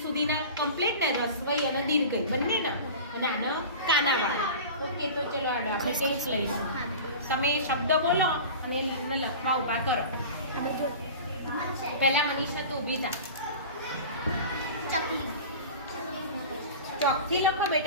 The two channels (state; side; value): inverted; both; correlation -0.35